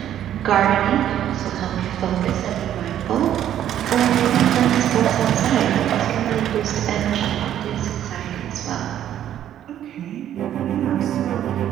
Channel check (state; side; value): quieter; left; 11.0 dB